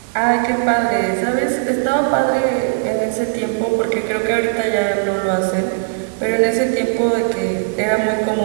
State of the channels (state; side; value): silent; left; digital silence